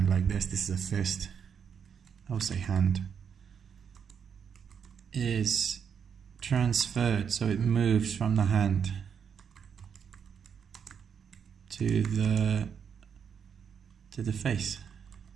like this. This is a fist. I'll say hand. Is transferred, so it moves from the hand to the face.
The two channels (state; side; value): quieter; left; 7.3 dB